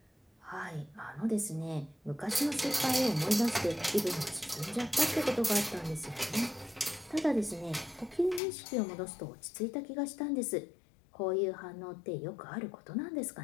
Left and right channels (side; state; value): right; drops out; at 8.4 s